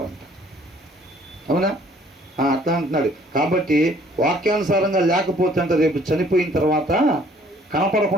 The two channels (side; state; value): both; normal; correlation 0.59